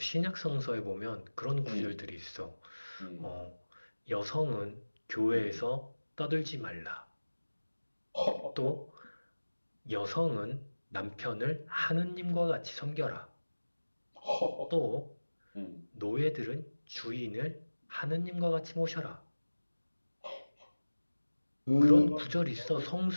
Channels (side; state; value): both; inverted; correlation -1.00